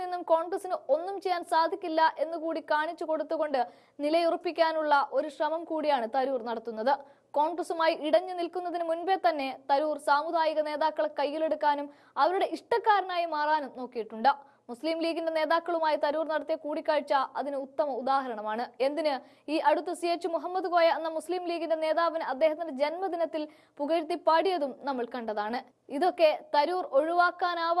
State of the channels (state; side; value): identical; both; correlation 1.00